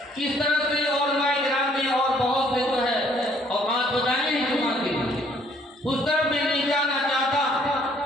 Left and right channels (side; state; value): both; normal; correlation 0.63